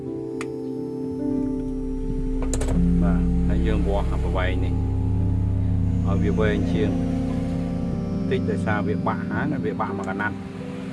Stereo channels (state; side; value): identical; both; correlation 1.00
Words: dương bò học bài này ở phía bên chiên tích tại sao việc bạ há là việc bạ mà cần ăn